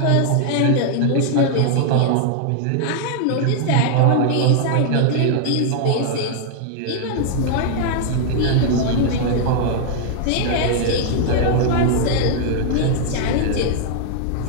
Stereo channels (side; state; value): both; different; correlation -0.01